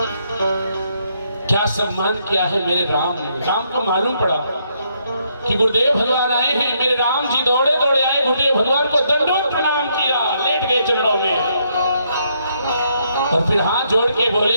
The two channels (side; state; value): both; inverted; correlation -0.74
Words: क्या सम्मान किया है मेरे राम ने। राम को मालूम पड़ा कि गुरुदेव भगवान आए हैं। मेरे राम जी दौड़े दौड़े आए, गुरुदेव भगवान को दंडोत प्रणाम किया, लेट गए चरणों में और फिर हाथ जोड़ के